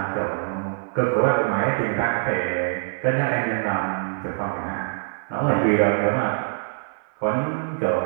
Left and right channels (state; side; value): silent; left; 56 dB below the other